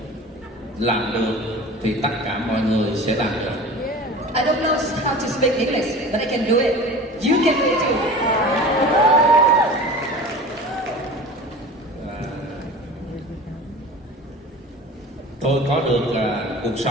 làm được thì tất cả mọi người sẽ làm được. I don't know how to speak English, but I can do it. You can do it too. Tôi có được cuộc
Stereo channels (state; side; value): normal; both; correlation 0.37